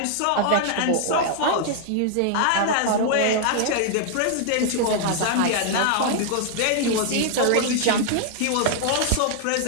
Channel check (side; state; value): both; different; correlation 0.00